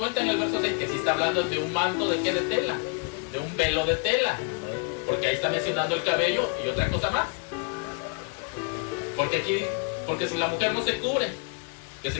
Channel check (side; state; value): right; quieter; 35.5 dB